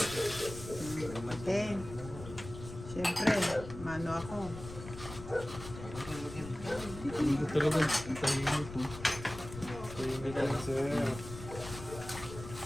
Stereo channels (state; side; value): noise; left; rumble, 12 dB below the sound